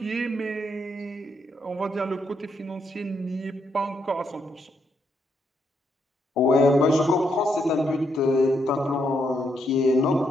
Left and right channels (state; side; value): normal; both; correlation 0.77